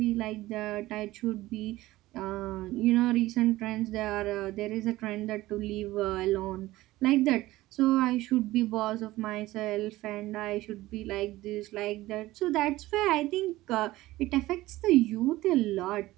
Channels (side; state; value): left; quieter; 17.4 dB